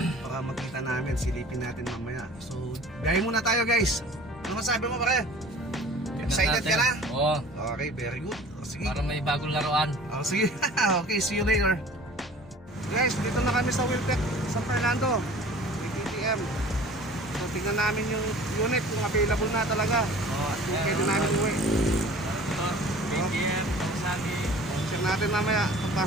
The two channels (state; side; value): normal; both; correlation 0.46